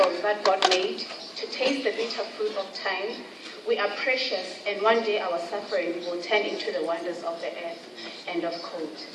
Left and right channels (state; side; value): identical; both; correlation 1.00